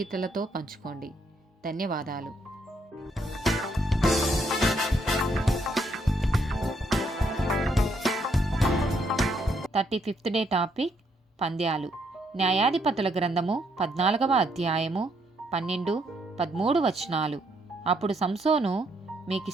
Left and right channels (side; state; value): both; normal; correlation 0.73